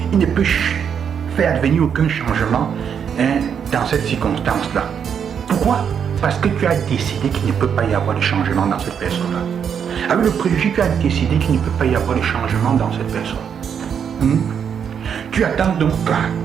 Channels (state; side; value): quieter; left; 7.6 dB